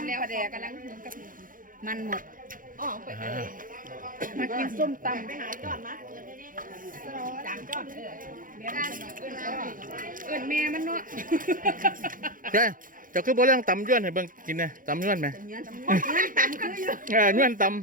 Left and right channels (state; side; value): late; left; 0.40 ms